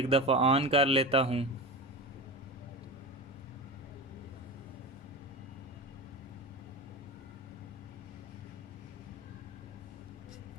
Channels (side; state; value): both; normal; correlation 0.25